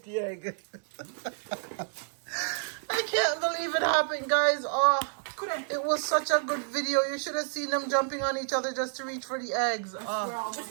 egg. I can't believe it happened, guys. Oh, it was such a good video. You should have seen them jumping on each other just to reach for the eggs. Oh.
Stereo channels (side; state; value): left; silent; 58 dB below the other